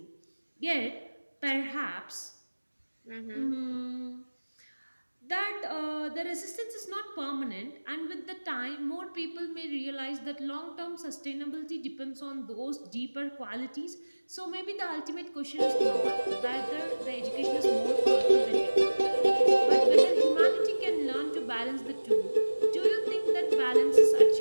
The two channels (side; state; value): both; inverted; correlation -1.00